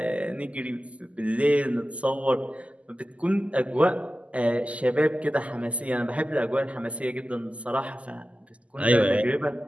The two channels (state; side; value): late; left; 0.064 ms